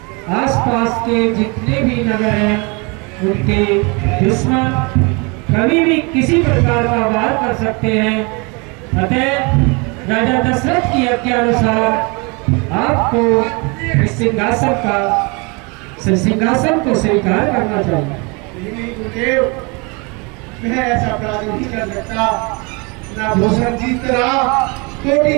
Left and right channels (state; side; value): quieter; left; 30.0 dB